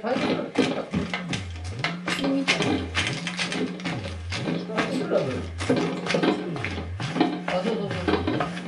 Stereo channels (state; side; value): identical; both; correlation 1.00